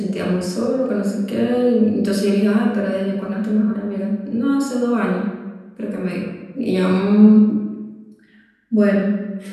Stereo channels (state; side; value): identical; both; correlation 1.00